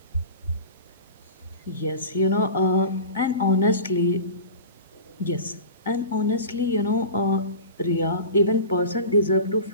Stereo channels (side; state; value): both; inverted; correlation -0.34